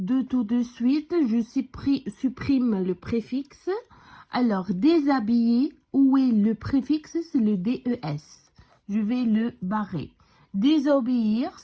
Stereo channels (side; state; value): both; identical; correlation 1.00